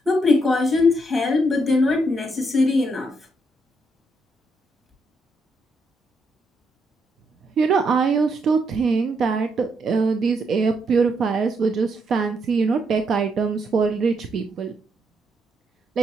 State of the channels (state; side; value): normal; both; correlation 0.78